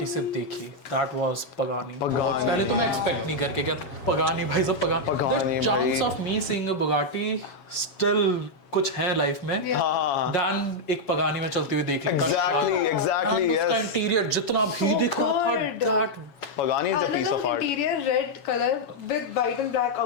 से देखी. That was Pagani. Pagani. पहले तो मैं expect नहीं करके क्या Pagani भाई सब Pagani. Pagani The chance भाई. of me seeing a Bugatti still कुछ है लाइफ में. हाँ. Dan एक Pagani में चलते हुए देख लेता. Exactly, उसका yes. इंटीरियर जितना भी So दिख रहा था good. that Pagani is a piece of art. Interior red color with white and black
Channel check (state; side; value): late; right; 7.2 ms